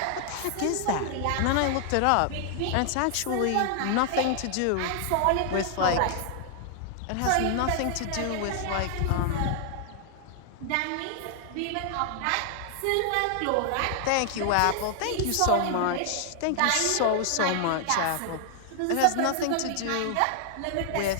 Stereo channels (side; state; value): both; different; correlation 0.00